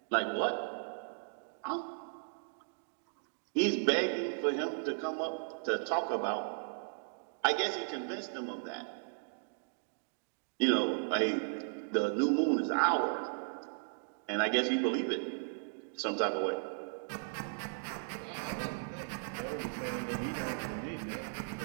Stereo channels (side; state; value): left; silent; digital silence